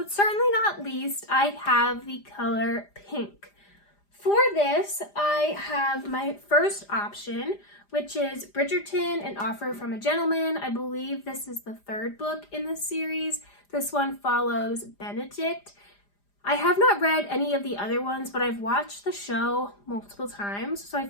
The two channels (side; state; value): right; late; 5.0 ms